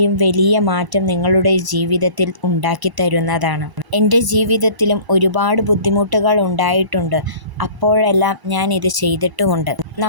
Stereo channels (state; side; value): late; left; 1.0 ms